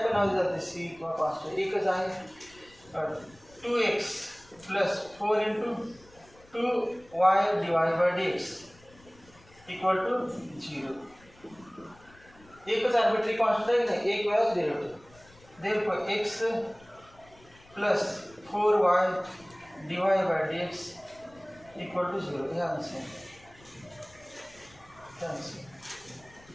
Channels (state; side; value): noise; left; rumble, 26 dB below the sound